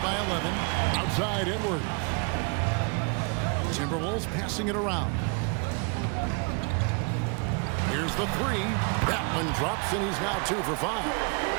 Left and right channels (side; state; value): left; quieter; 34.9 dB